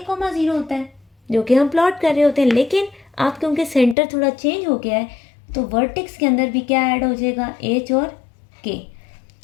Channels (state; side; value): drops out; right; at 4.0 s